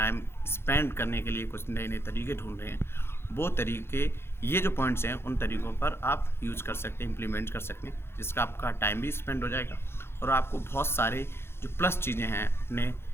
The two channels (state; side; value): late; right; 0.12 ms